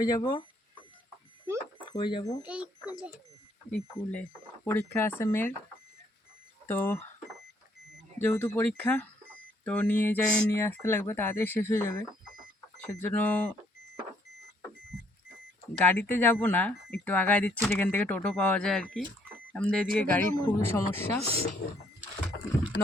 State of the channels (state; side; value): normal; both; correlation 0.67